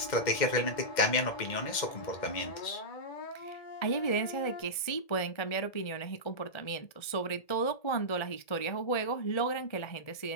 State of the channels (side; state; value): right; late; 1.7 ms